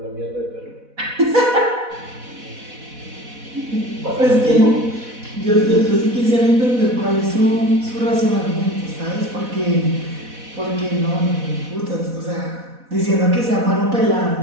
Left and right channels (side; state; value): left; late; 4.1 ms